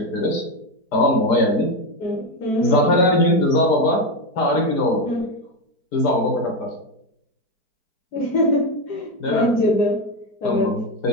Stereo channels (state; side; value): late; right; 4.5 ms